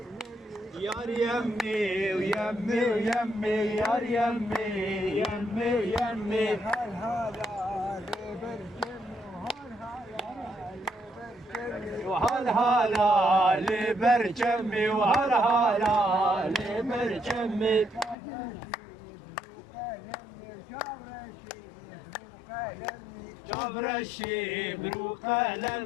يار يمي ويمي ويمي يار يمي يمي يمي وهل هلا لبرجمي وهل هلا لبرجمي جبر الشيب رو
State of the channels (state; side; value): drops out; right; at 18.2 s